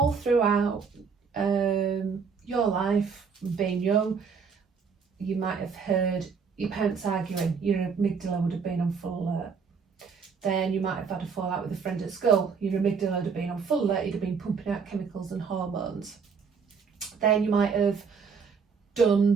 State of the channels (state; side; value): quieter; left; 5.8 dB